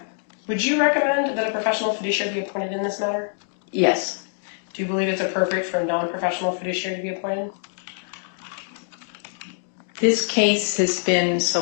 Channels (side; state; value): right; silent; digital silence